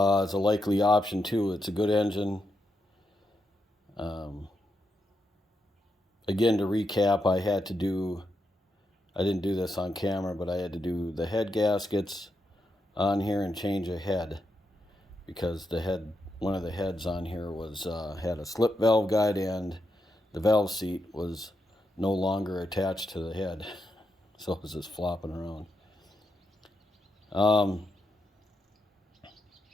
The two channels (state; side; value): normal; both; correlation 0.84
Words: a likely option too. It's a good engine. Um, Again, to recap, I didn't do this on camera, but I had to do the head gaskets on here and change a head, because one of the heads on here was had a slip valve guide, and the valve seat was no longer attached to the head, so it was just flopping around.